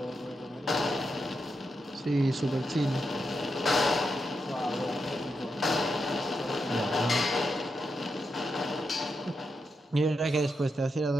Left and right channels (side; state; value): both; normal; correlation 0.85